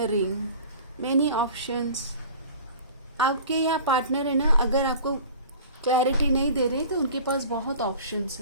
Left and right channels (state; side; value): inverted; both; correlation -0.42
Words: ring, many options. आपके यहाँ पार्टनर है ना, अगर आपको क्लैरिटी नहीं दे रहे तो उनके पास बहुत ऑप्शंस